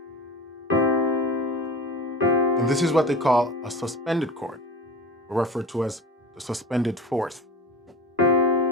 And this is what they call a suspended chord, or referred to as the suspended fourth.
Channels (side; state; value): both; normal; correlation 0.33